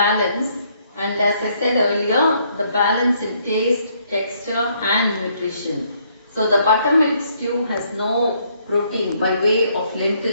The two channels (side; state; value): both; inverted; correlation -0.69